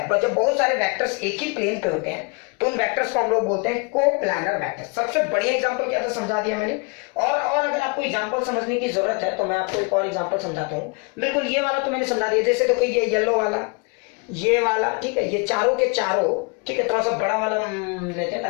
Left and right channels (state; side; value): quieter; right; 32.1 dB